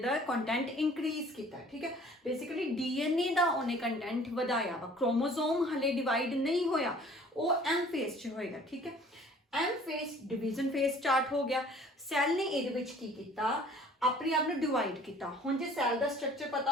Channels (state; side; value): normal; both; correlation 0.52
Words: कंटेंट इंक्रीज किया ठीक है बेसिकली डीएनए का उन्हें कंटेंट वधाया वा क्रोमोजोम हले डिवाइड नहीं होया वो एम फेस च होएगा ठीक है M phase division phase start हो गया सैल ने ये की किया अपने आप में डिवाइड किया हुण जे सैल का स्ट्रक्चर पता